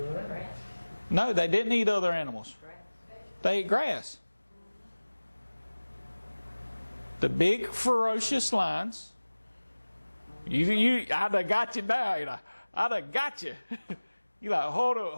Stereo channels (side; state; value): both; inverted; correlation -1.00